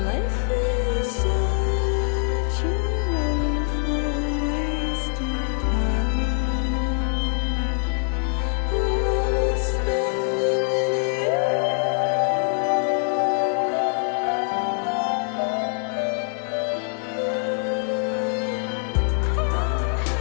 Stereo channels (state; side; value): silent; right; 57 dB below the other